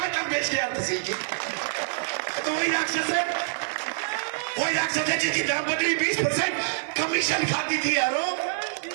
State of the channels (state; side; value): silent; left; 61 dB below the other